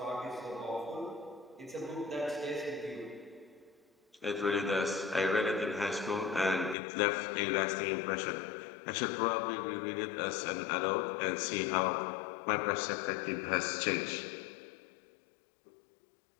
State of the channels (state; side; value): drops out; right; at 6.8 s